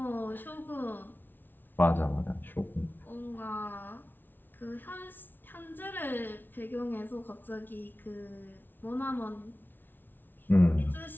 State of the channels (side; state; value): right; late; 0.092 ms